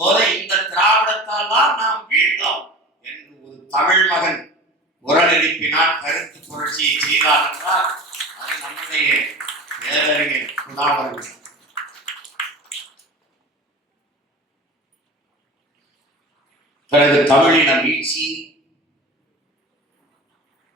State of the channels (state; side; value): normal; both; correlation 0.35